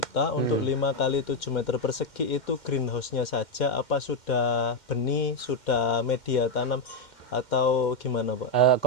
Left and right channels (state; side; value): late; right; 2.1 ms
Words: untuk 5 kali 7 meter persegi itu greenhouse-nya saja, apa sudah benih, sudah media tanam atau gimana Pak?